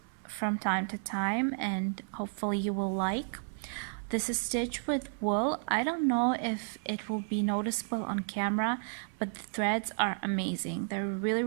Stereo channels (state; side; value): silent; left; 56 dB below the other